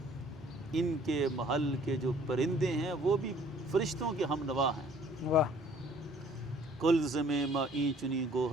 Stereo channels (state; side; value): normal; both; correlation 0.56